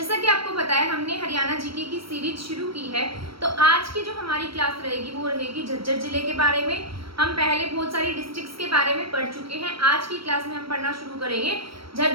कि आपको पता है, हमने हरियाणा जीके की सीरीज शुरू की है। तो आज की जो हमारी क्लास रहेगी वो रहेगी झज्जर जिले के बारे में। हम पहले बहुत सारी डिस्ट्रिक्ट्स के बारे में पढ़ चुके हैं। आज की क्लास में हम पढ़ना शुरू करेंगे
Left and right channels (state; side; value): late; left; 0.75 ms